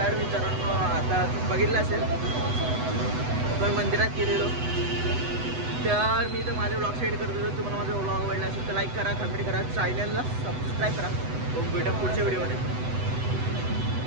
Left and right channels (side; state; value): left; late; 8.0 ms